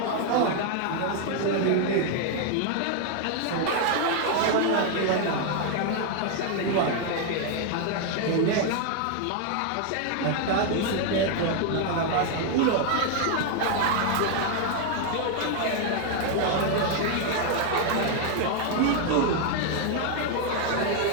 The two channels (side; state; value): both; different; correlation 0.00